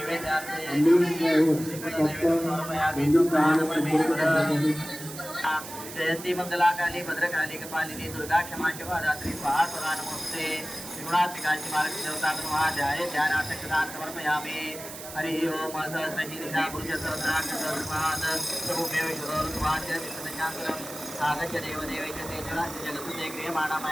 ॲम्ब्युलन्स ड्रायव्हर तात्काळ मंदिर कार्यालय संपर्क साधायचा आहे. जयंती मंगलाकाली भद्रकाली कपालिनी दुर्गा क्षमा शिवा रात्रि स्वाहा स्वरा नमस्ते त्रिगुणात्मिकांची मार्ग देवता ध्याय ध्यानार्थक दान समर्पयामि. हरि ओम सहस्रशीर्षा पुरुष सहस्राक्षरस्मात् प्रभुमेव ईश्वरोऽस्मात् विष्णुशाङ्करम् आगच्छ देवदेवेश तेजराश्च जगत्सुते क्रियमाणा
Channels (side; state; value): right; noise; hiss, 12 dB below the sound